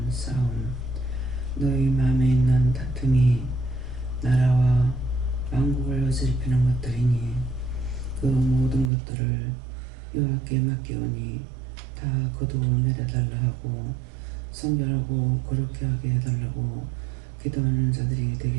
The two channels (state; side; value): drops out; left; at 8.9 s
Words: 싸움, 너희 마음에 있는 다툼이 나라와 왕국을 어지럽히는 것들이니 그 모든 것들을 여호와께 맡기오니 다 거두어 내려달라 하고 성결하고 거룩히 하게 해달라고 기도하는 자들이